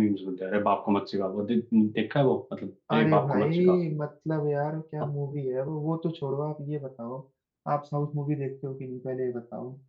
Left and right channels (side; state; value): both; identical; correlation 1.00